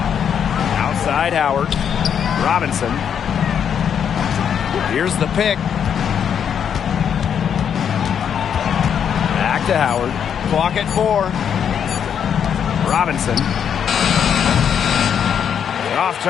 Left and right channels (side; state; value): right; quieter; 8.2 dB